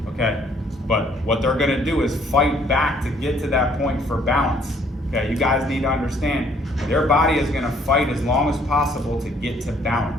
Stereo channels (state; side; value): normal; both; correlation 0.63